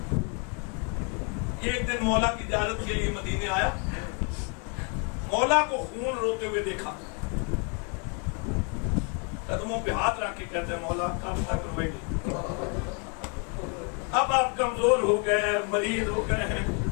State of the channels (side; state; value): right; quieter; 37.1 dB